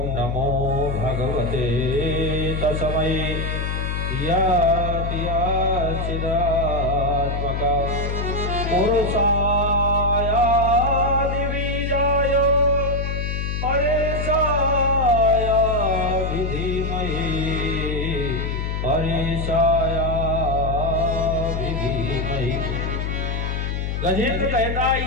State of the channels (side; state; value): left; noise; hum, 2 dB below the sound